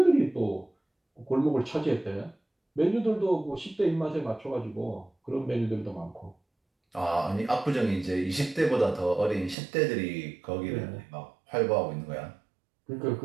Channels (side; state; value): left; drops out; at 9.6 s